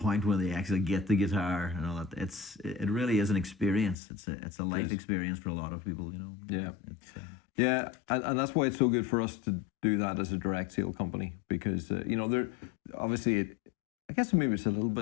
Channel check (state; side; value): drops out; right; at 4.0 s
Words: when they actually get the guitar and all that. It really is an experience. It's a life experience for a lot of people, you know. Yeah, yeah, and that's why it's so good for us to do that as a direct sale company, because you know, there obviously I guess maybe it's a little